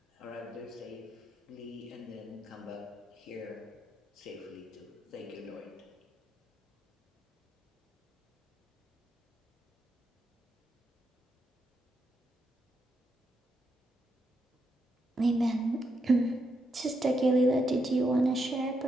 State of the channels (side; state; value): both; normal; correlation 0.81